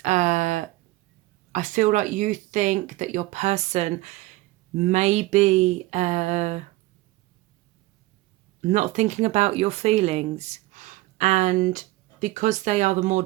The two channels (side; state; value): left; quieter; 19.3 dB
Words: I feel like you think that your person may be not thinking about your feelings, and because they are the more